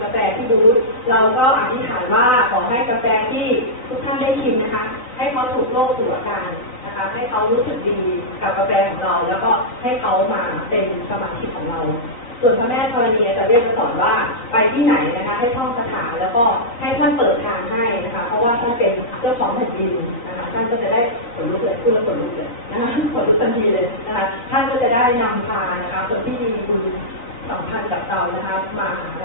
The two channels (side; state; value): right; late; 4.0 ms